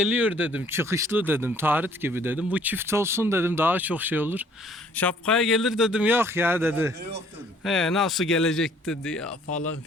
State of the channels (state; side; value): normal; both; correlation 0.59